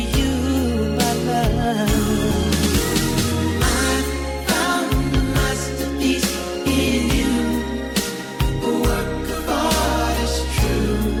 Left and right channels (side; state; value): both; identical; correlation 1.00